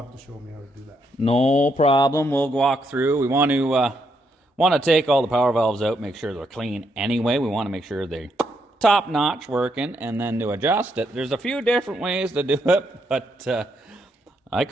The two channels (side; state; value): both; normal; correlation 0.77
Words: to show me how to do that. No problem. We'll walk through. We want to take all the power valves out, make sure they're clean anyway. We want to make sure they're top notch working, and then to adjust it. There's a few different ways to do it, but I